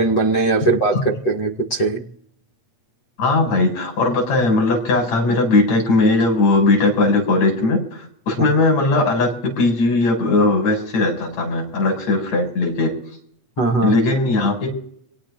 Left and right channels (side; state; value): right; late; 8.0 ms